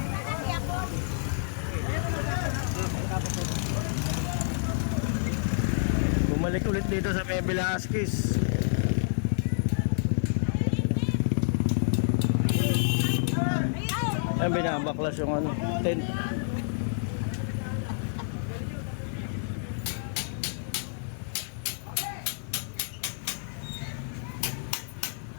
Bumalik ulit dito sa May Velasquez. Ayan, binabaklas yung ano, tent.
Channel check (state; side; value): silent; right; digital silence